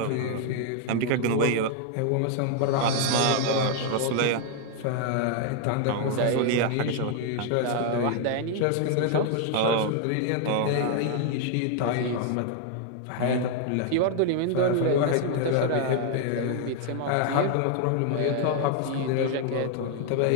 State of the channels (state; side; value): different; both; correlation 0.00